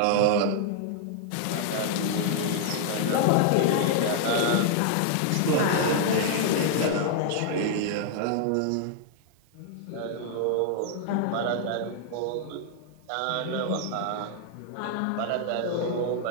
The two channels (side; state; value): both; different; correlation -0.01